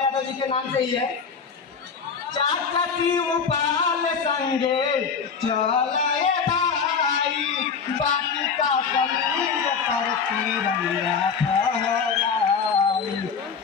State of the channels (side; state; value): right; quieter; 5.9 dB